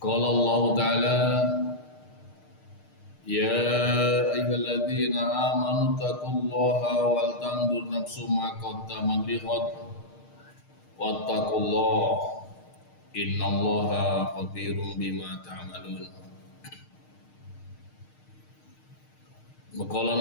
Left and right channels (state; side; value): late; right; 6.5 ms